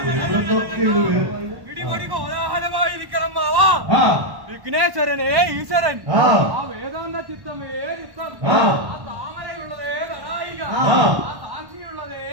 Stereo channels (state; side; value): late; left; 1.1 ms